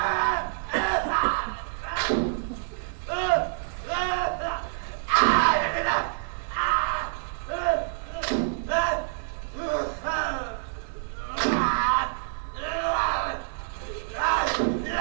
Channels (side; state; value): left; silent; digital silence